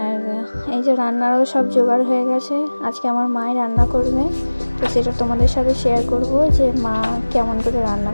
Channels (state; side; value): inverted; both; correlation -1.00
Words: এই যে রান্নারও সব জোগাড় হয়ে গেছে। আজকে আমার মাই রান্না করবে, তো সেটা তোমাদের সাথে শেয়ার করব যে মা কেমন করে রান্না